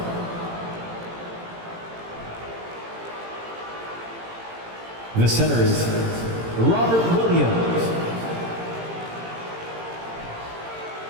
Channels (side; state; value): left; late; 18 ms